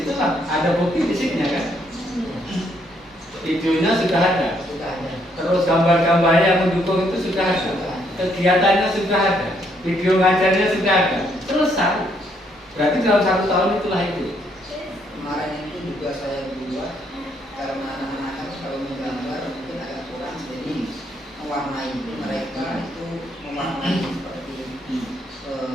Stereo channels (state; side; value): normal; both; correlation 0.71